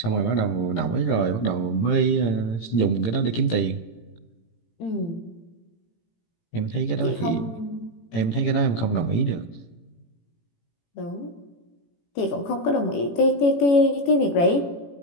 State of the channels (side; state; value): right; late; 18 ms